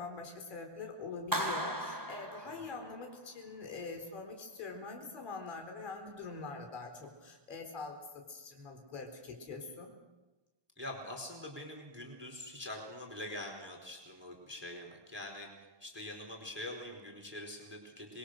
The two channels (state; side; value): late; left; 1.2 ms